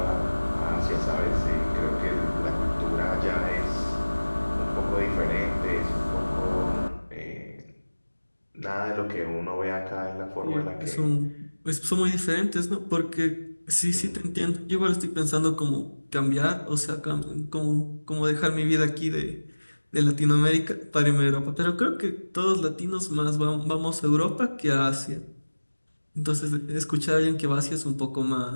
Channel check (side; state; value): both; inverted; correlation -1.00